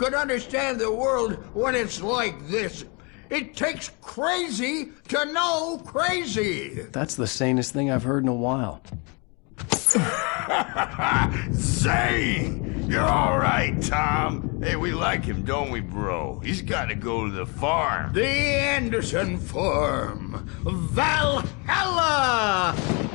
understand the world when it's like this? It takes crazy to know crazy. That's the sanest thing I've heard in a while. Zane! You're all right, Tom. Hey, we like him, don't we, bro? He's got to go to the farm. The Anderson Farm. Valhalla!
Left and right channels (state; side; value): quieter; right; 31.8 dB